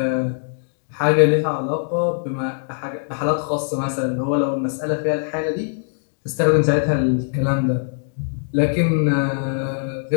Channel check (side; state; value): right; silent; digital silence